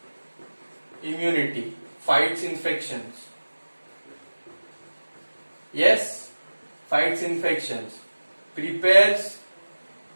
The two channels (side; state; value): both; inverted; correlation -1.00